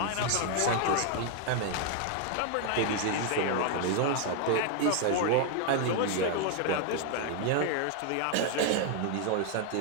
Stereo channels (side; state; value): both; different; correlation 0.00